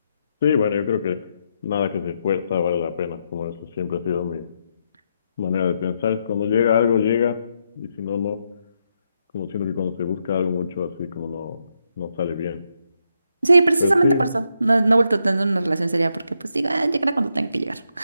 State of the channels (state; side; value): inverted; both; correlation -0.80